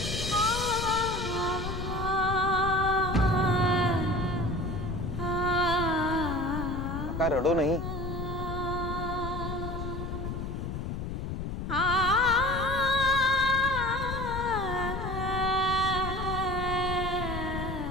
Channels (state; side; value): noise; left; rumble, 4 dB below the sound